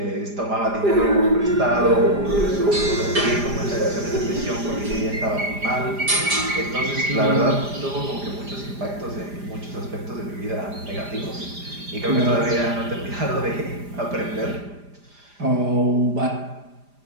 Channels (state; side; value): late; left; 4.9 ms